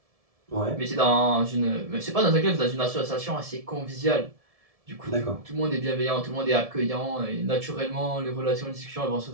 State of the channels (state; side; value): late; left; 1.7 ms